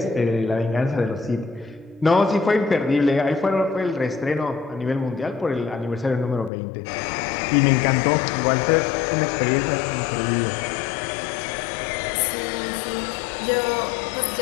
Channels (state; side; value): drops out; right; at 6.5 s